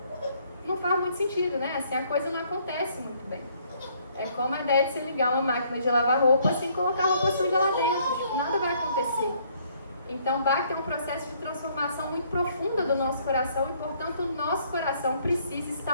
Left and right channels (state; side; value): inverted; both; correlation -0.65